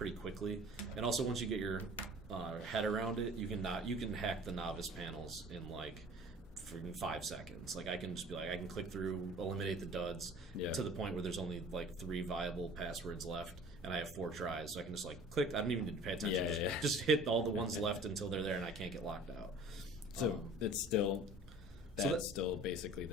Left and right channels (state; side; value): normal; both; correlation 0.46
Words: quickly, and also once you get your head around it, you can hack the novice panels in like freaking 5 seconds. Like, I can just be like, I can click through, eliminate the duds Yeah. to the point where there's only like 3 viable passwords left, and I have 4 tries, so I can just like click. I don't even need to pay attention. Yeah, Just hit all the ones left until they're there, and I can't get locked out. So it's still that's that's- still basically